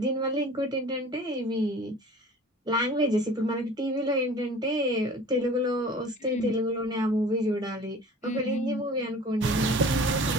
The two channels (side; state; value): both; normal; correlation 0.44